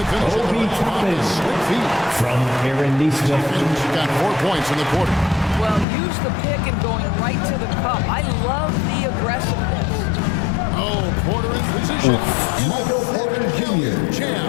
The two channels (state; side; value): drops out; right; at 5.9 s